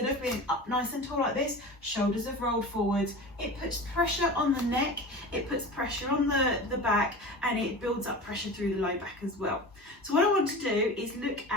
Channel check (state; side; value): normal; both; correlation 0.33